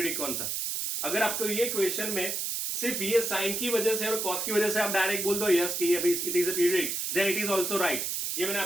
कौन सा. अगर आपको ये क्वेश्चन में सिर्फ ये साइन की वजह से और कॉस की वजह से आप डायरेक्ट बोल दो यस कि ये भाई it is a periodic, then it is also right. ये मैंने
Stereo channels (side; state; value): right; noise; hiss, 1 dB below the sound